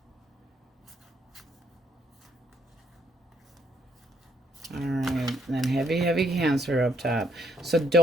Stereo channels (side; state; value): both; normal; correlation 0.71